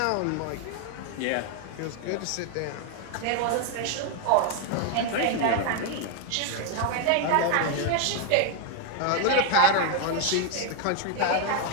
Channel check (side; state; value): both; different; correlation 0.00